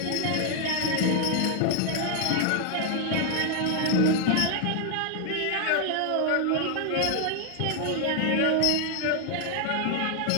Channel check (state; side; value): different; both; correlation 0.00